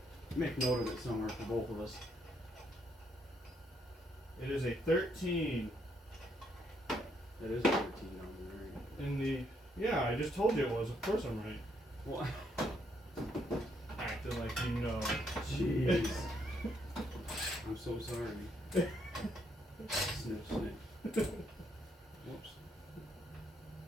Make note of it somewhere for both of us. It is a 13 That is 13 on there. in the. Yeah, I just told you it was. Of course I'm right. What? Acting like you know. Jeez. I'm so sorry. Sniff, sniff. Whoops.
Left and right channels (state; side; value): normal; both; correlation 0.73